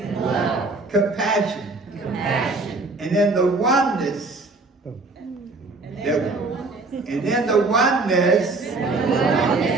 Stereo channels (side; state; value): left; quieter; 3.4 dB